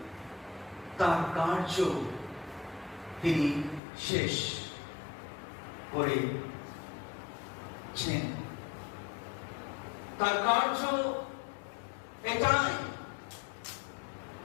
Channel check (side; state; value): right; drops out; at 3.8 s